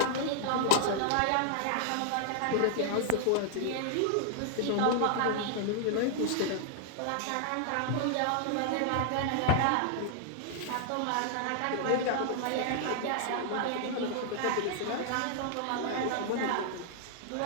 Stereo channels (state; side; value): different; both; correlation -0.01